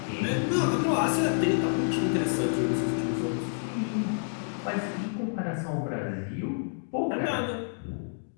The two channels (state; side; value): silent; right; digital silence